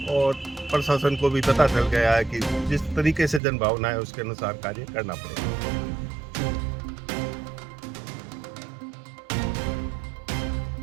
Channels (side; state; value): left; drops out; at 3.4 s